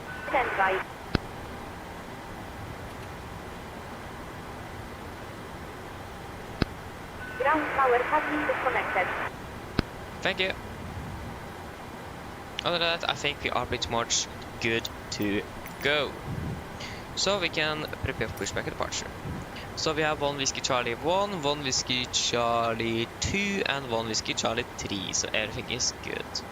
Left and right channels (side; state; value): both; identical; correlation 1.00